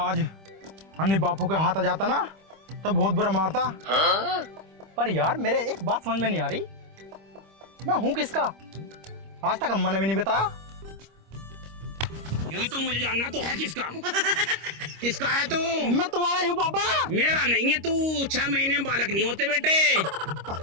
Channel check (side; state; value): left; late; 25 ms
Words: अन्नी बापू के हाथ आ जाता ना तो बहुत बुरा मारता। पर यार मेरे एक बात समझ में नहीं आ रही, मैं हूँ किसका? आज तक अम्मा ने भी नहीं बताया। यही तो मुझे जानना तो है किसका। किसका है तू? मैं तुम्हारा ही हूँ पापा। मेरा नहीं है, तू 6 महीने में बालक नहीं होते बेटे।